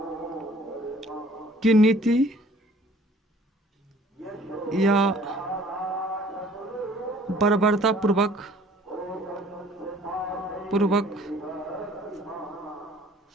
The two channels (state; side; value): normal; both; correlation 0.54